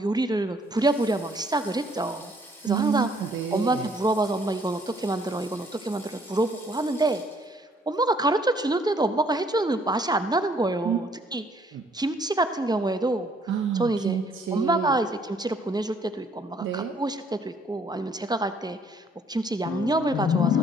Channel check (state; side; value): normal; both; correlation 0.64